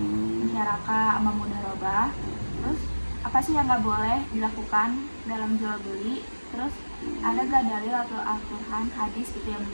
musyarakah, sama mudharabah. Terus apa sih yang nggak boleh dilakukan dalam jual beli? Terus ada gak dalil atau Al-Quran, hadis gitu yang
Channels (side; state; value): both; inverted; correlation -1.00